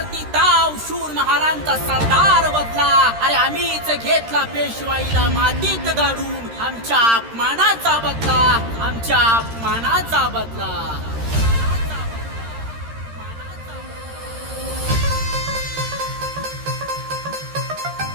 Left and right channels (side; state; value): left; late; 13 ms